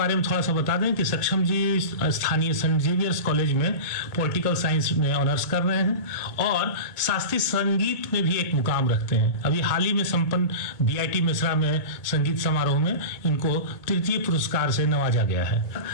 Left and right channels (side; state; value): right; late; 2.2 ms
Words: में थोड़ा सा बता दें कि सक्षम जी स्थानीय सेंट जेवियर्स कॉलेज में पॉलिटिकल साइंस में ऑनर्स कर रहे हैं और शास्त्रीय संगीत में भी एक मुकाम रखते हैं। अभी हाल ही में संपन्न बीआईटी मिश्रा में संगीत समारोह में इनको तृतीय पुरस्कार से नवाजा गया है।